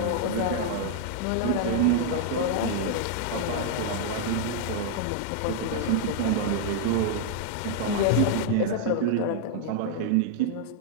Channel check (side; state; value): both; different; correlation 0.00